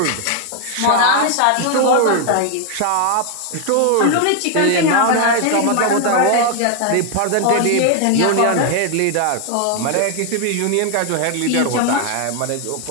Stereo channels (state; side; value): different; both; correlation 0.00